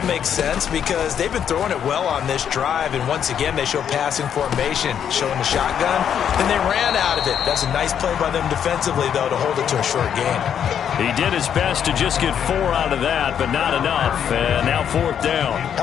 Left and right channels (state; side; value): quieter; right; 8.7 dB